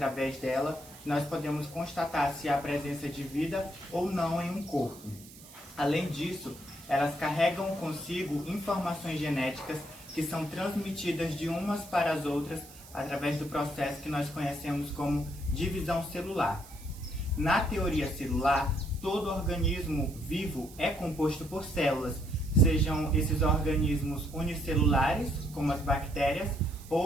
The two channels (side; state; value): right; noise; hiss, 19 dB below the sound